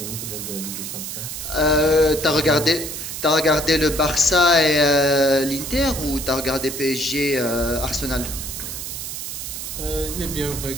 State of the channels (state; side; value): noise; right; hiss, 7 dB below the sound